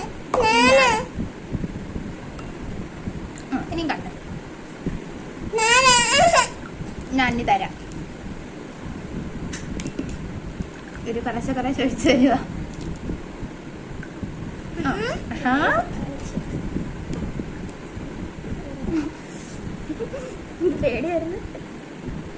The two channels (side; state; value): both; identical; correlation 1.00